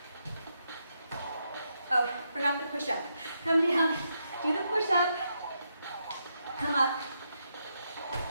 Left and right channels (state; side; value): inverted; both; correlation -0.81